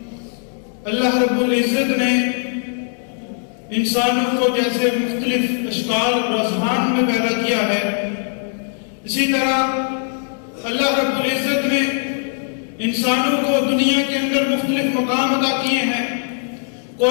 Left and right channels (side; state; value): right; silent; 62 dB below the other